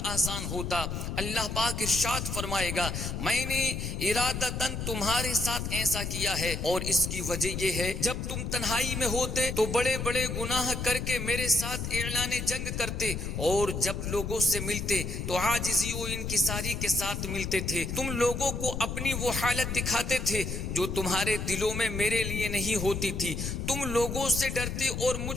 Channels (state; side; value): noise; left; rumble, 4 dB below the sound